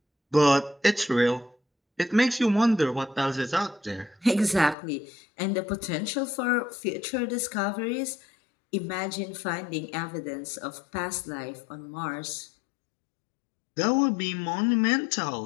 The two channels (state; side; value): drops out; right; at 4.8 s